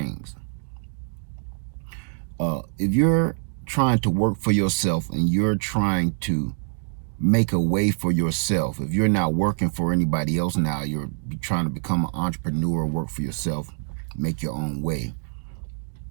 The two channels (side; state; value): left; silent; digital silence